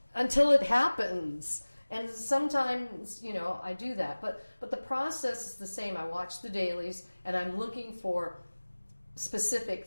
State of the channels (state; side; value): inverted; both; correlation -1.00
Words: happens." And sometimes, I do that. But the process is the same. I watch the dailies, and I'm looking for specific